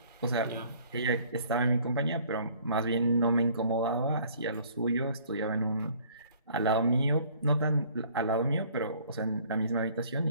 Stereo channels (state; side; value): inverted; both; correlation -0.56